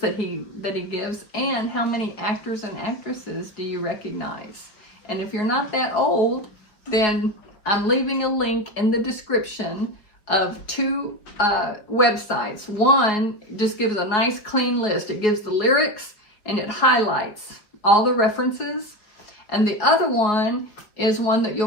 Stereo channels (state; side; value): late; right; 4.7 ms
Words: that he gives, and how many actors and actresses do you recognize? And if you're not that old, then I'm leaving a link in the description of two websites. One just gives a nice clean list. It gives the lyrics and it highlights all the references. And the other one is one that you'll